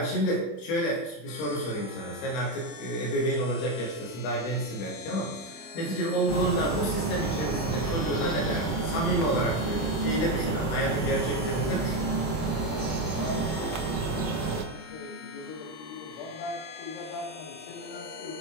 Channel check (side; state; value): right; late; 26 ms